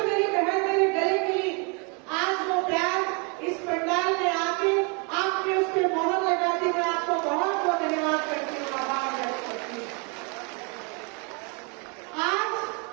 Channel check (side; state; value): left; quieter; 34.4 dB